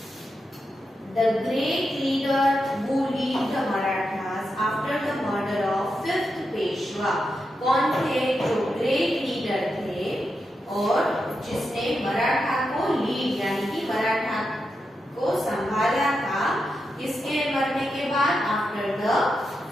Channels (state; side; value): normal; both; correlation 0.87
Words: the great leader who lead the Marathas after the murder of 5th Peshwa. कौन थे जो ग्रेट लीडर थे और जिसने मराठा को लीड यानी कि मराठा को संभाला था किसके मरने के बाद? After the